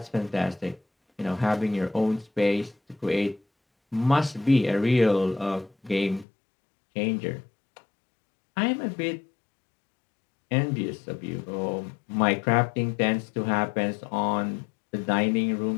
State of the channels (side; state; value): right; drops out; at 6.2 s